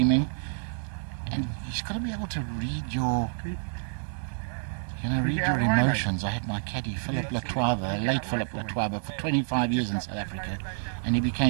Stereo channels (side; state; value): left; silent; digital silence